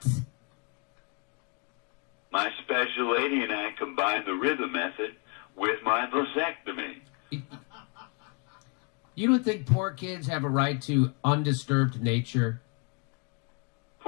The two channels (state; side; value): quieter; right; 34.1 dB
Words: My special lady and I combined the rhythm method with my vasectomy. You don't think poor kids have a right to undisturbed nature?